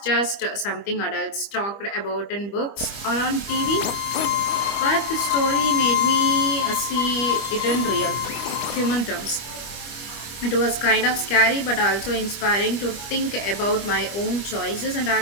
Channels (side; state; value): right; late; 25 ms